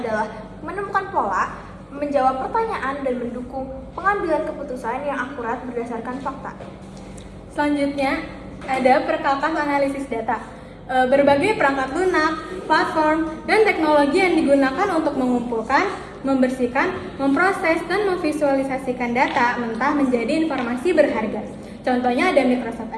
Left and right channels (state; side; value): identical; both; correlation 1.00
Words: menemukan pola, menjawab pertanyaan, dan mendukung pengambilan keputusan yang akurat berdasarkan fakta. Selanjutnya, ada perkakas analisis data. Berbagai perangkat lunak, platform, dan teknologi yang digunakan untuk mengumpulkan, membersihkan, memproses, dan memvisualisasikan data mentah menjadi informasi berharga. Contohnya ada Microsoft